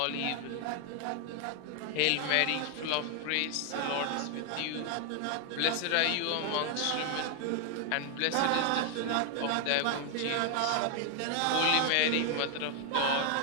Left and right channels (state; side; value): different; both; correlation 0.01